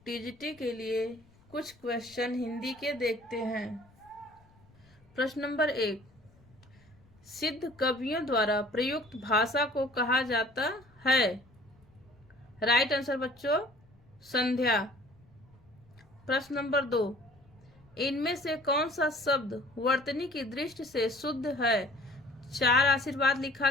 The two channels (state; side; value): noise; left; rumble, 29 dB below the sound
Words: टीजीटी के लिए कुछ क्वेश्चन हिंदी के देखते हैं। प्रश्न नंबर 1, सिद्ध कवियों द्वारा प्रयुक्त भाषा को कहा जाता है। राइट आंसर बच्चों संध्या। प्रश्न नंबर 2, इनमें से कौन सा शब्द वर्तनी की दृष्टि से शुद्ध है। 4 आशीर्वाद लिखा